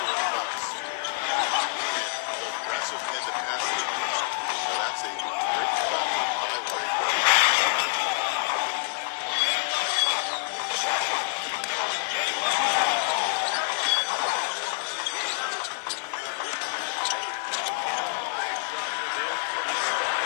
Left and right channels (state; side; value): silent; right; digital silence